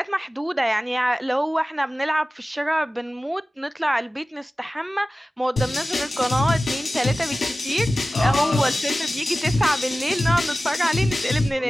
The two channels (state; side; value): normal; both; correlation 0.96